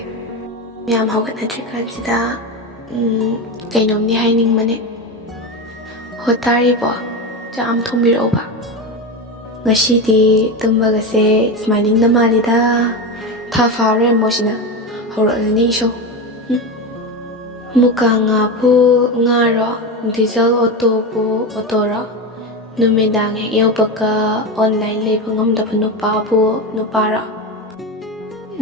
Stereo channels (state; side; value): normal; both; correlation 0.19